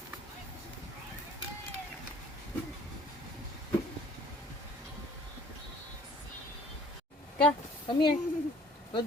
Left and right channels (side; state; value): both; normal; correlation 0.54